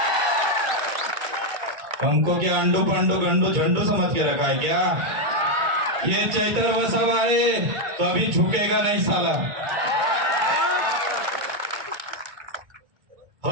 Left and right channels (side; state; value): left; late; 2.2 ms